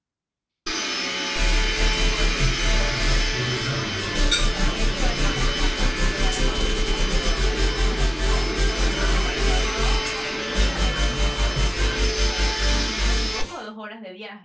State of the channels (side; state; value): both; identical; correlation 1.00